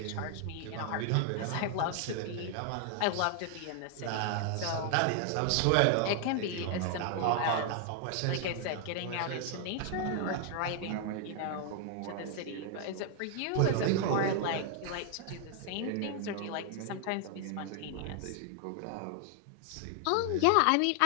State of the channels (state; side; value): different; both; correlation 0.00